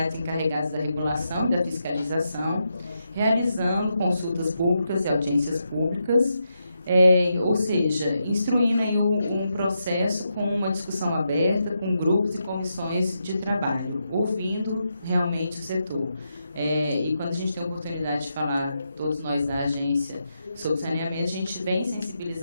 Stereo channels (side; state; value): both; inverted; correlation -0.84